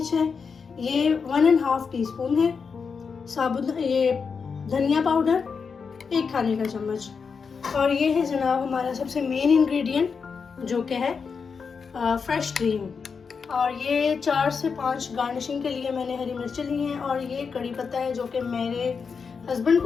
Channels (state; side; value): quieter; right; 5.6 dB